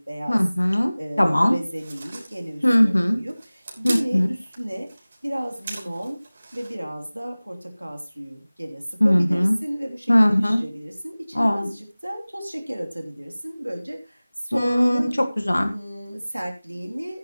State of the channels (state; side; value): inverted; both; correlation -0.99